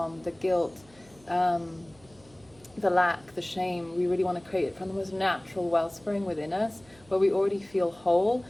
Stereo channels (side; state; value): right; noise; hum, 28 dB below the sound